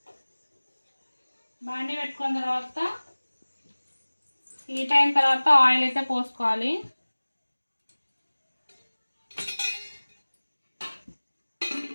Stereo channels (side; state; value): both; inverted; correlation -1.00